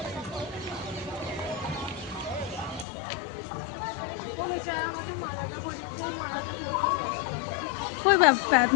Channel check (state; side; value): drops out; right; at 2.9 s